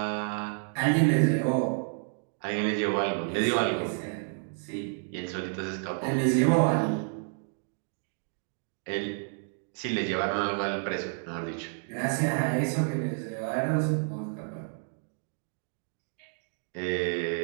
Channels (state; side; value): silent; left; 56 dB below the other